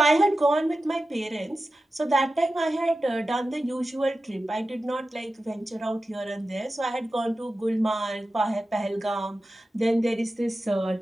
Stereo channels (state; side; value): normal; both; correlation 0.93